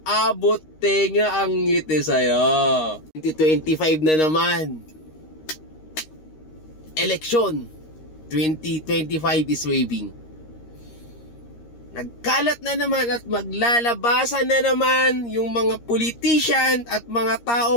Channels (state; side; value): late; right; 13 ms